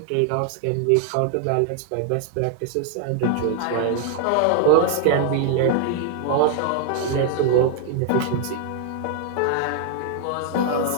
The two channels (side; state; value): both; different; correlation 0.00